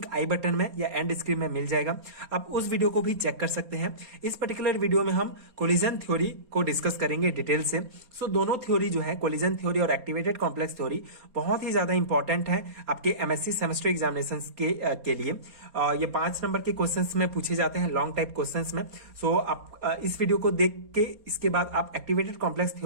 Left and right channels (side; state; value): left; late; 4.3 ms